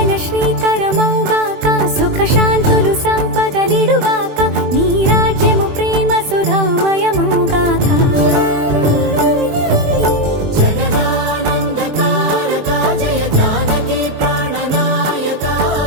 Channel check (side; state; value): left; late; 21 ms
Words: శ్రీకరమౌగాక సుఖ శాంతులు సంపదలిడుగాక నీ రాజ్యము ప్రేమ సుధామయమౌగాక